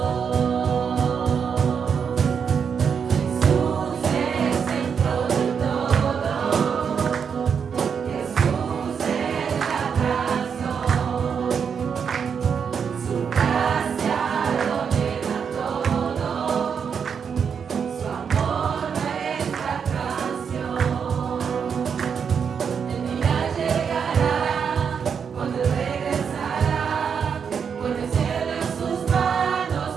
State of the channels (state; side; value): quieter; left; 6.8 dB